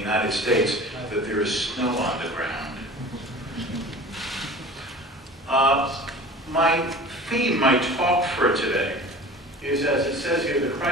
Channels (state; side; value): normal; both; correlation 0.39